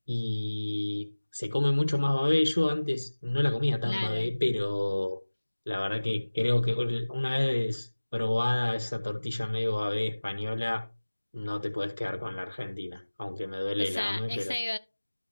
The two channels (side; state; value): both; inverted; correlation -1.00